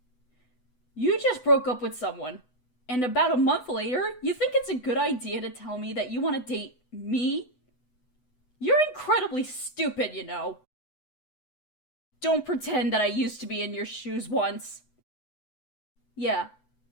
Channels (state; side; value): late; right; 8.0 ms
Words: You just broke up with someone, and about a month later, you think it's a good idea to tell me that you want to date me? You're incredibly stupid, you know. Don't pretend that I used to be in your shoes once. Yeah,